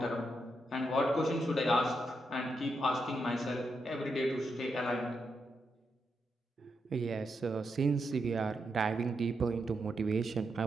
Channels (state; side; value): normal; both; correlation 0.83